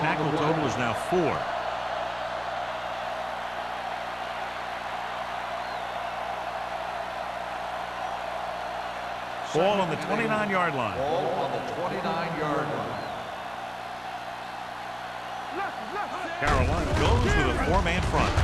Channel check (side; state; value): both; identical; correlation 1.00